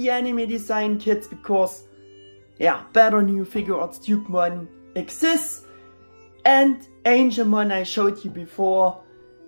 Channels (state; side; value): inverted; both; correlation -1.00